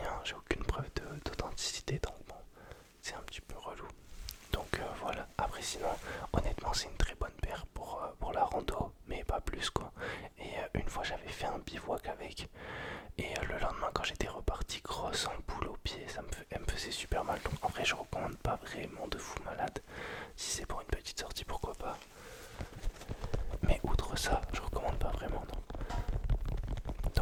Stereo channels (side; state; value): both; identical; correlation 1.00